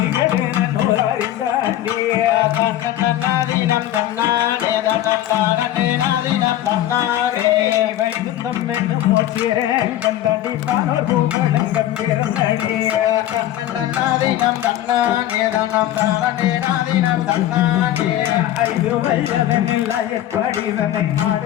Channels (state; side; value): quieter; right; 12.9 dB